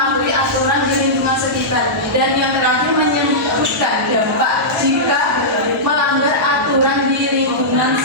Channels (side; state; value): both; normal; correlation -0.13